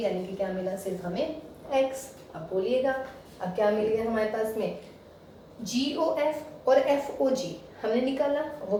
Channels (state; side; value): identical; both; correlation 1.00